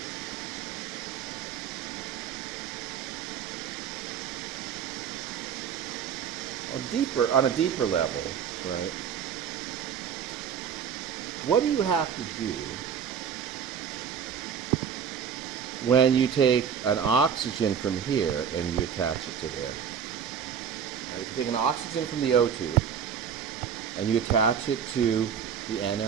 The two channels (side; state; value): left; quieter; 7.7 dB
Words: On a deeper level, right? What do you have to do when you take an oxygen from here and you attach it to there? Right, you take an oxygen from the O2 and you attach it to the